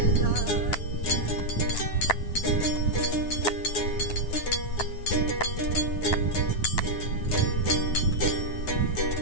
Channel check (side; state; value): right; late; 9.4 ms